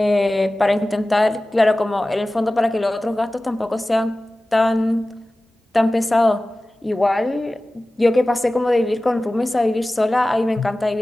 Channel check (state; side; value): normal; both; correlation 0.97